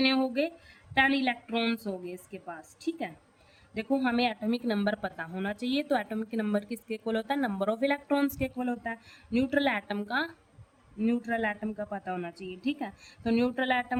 हो गए, 10 इलेक्ट्रॉन्स हो गए इसके पास। ठीक है, देखो हमें एटॉमिक नंबर पता होना चाहिए, तो एटॉमिक नंबर किसके इक्वल होता है, नंबर ऑफ इलेक्ट्रॉन्स के इक्वल होता है। न्यूट्रल एटम का पता होना चाहिए। ठीक है, तो न्यूट्रल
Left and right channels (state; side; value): identical; both; correlation 1.00